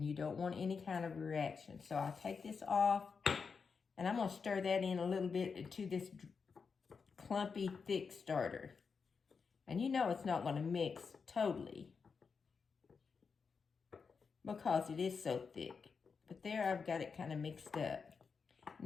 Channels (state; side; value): quieter; right; 5.4 dB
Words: you don't want any kind of reaction. So I take this off and I'm going to stir that in a little bit into this clumpy, thick starter. And you know it's not going to mix totally, because it is so thick. But there I've got it kind of mixed up.